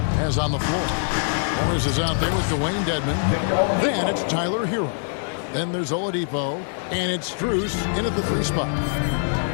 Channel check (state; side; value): silent; right; 63 dB below the other